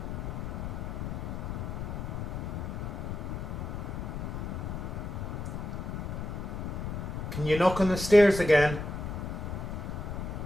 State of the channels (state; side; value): noise; left; rumble, 4 dB below the sound